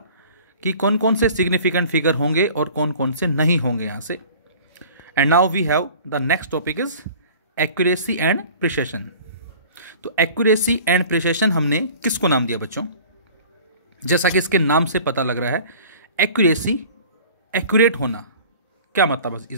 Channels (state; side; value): inverted; both; correlation -0.45